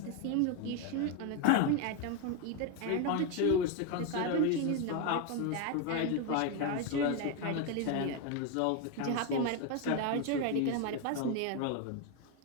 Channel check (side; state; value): both; different; correlation 0.02